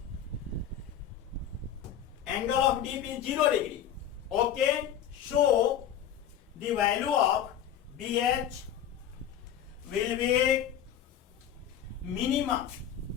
0 degree. Okay, so the value of BH will be minimum.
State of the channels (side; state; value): right; quieter; 9.7 dB